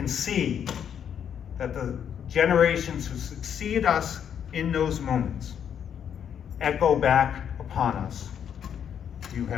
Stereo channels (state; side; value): quieter; right; 8.5 dB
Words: see that the generations who succeed us in those moments echo back upon us. You